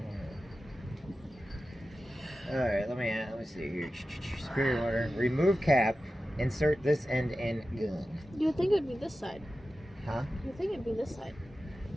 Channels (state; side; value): normal; both; correlation 0.93